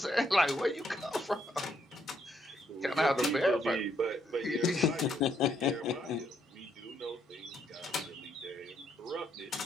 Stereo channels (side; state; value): both; normal; correlation 0.73